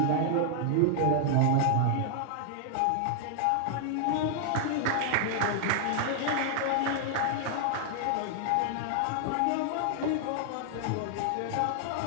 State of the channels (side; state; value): both; different; correlation -0.01